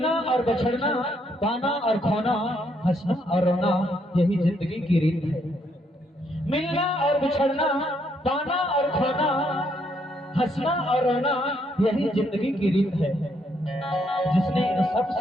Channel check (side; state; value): both; normal; correlation 0.73